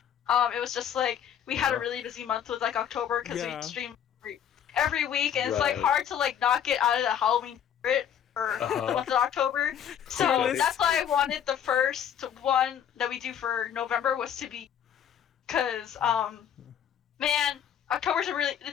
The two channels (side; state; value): right; quieter; 9.1 dB